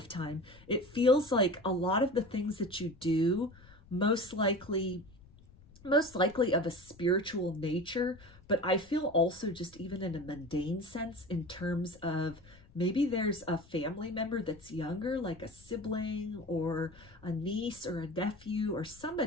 it feels like a lot of the things that you do, most likely of a spiritual nature, but I feel also just even in a mundane sense, in terms of maybe there's a family member that's younger, like a sibling or a niece or a nephew or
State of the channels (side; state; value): left; noise; rumble, 24 dB below the sound